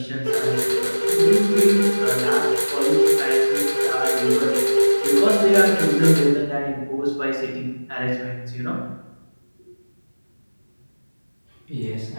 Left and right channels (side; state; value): both; inverted; correlation -1.00